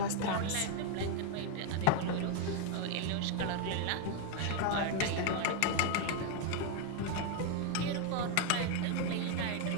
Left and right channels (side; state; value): both; different; correlation 0.01